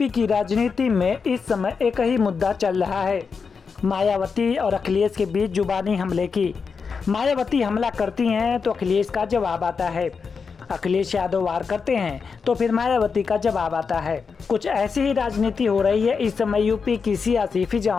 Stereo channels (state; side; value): quieter; right; 5.4 dB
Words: की राजनीति में इस समय एक ही मुद्दा चल रहा है, मायावती और अखिलेश के बीच जुबानी हमले की। मायावती हमला करती हैं तो अखिलेश का जवाब आता है, अखिलेश यादव वार करते हैं तो फिर मायावती का जवाब आता है। कुछ ऐसी ही राजनीति हो रही है इस समय यूपी की सियासी